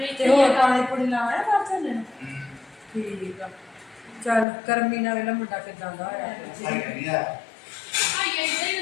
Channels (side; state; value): right; drops out; at 4.5 s